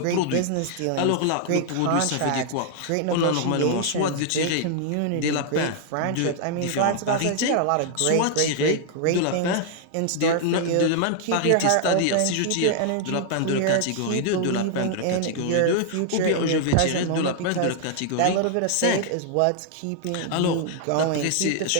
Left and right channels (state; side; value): different; both; correlation 0.00